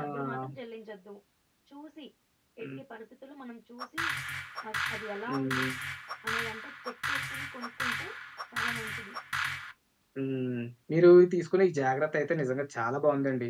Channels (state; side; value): identical; both; correlation 1.00